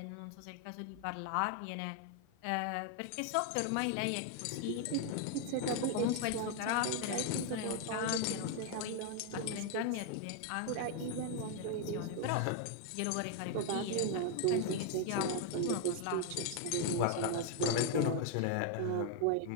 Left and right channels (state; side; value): different; both; correlation 0.01